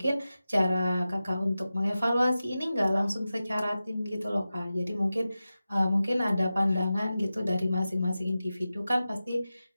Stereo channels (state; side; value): inverted; both; correlation -0.94